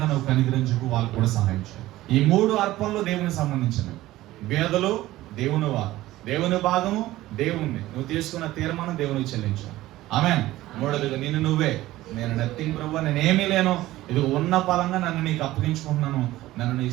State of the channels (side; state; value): left; quieter; 16.4 dB